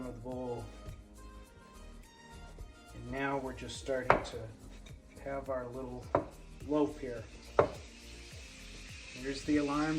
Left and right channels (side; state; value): both; identical; correlation 1.00